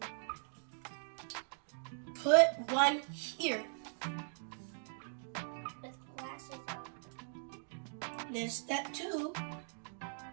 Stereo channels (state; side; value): silent; left; digital silence